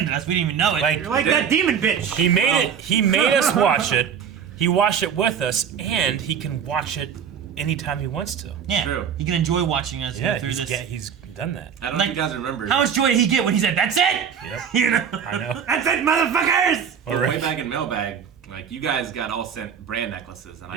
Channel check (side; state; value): left; quieter; 7.8 dB